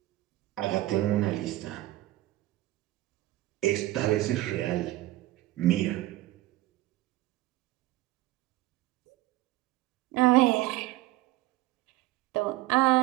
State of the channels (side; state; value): left; quieter; 16.8 dB